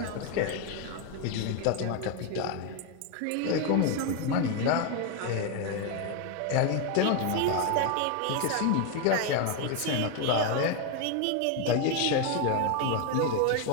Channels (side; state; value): both; different; correlation 0.01